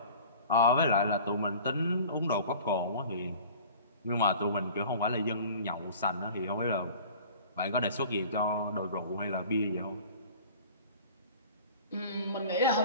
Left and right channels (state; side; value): inverted; both; correlation -0.43